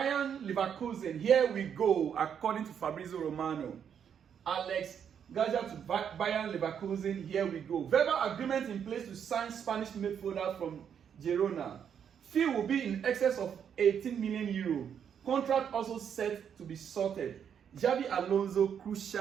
Leverkusen. Here we go, according to Fabrizio Romano. Aleix Garcia to Bayern Leverkusen. Here we go. Verbal agreement in place to sign Spanish midfielder from Girona. Fee will be in excess of 18 million euro. Contract also set to be sorted. Xabi Alonso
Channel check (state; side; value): quieter; left; 8.1 dB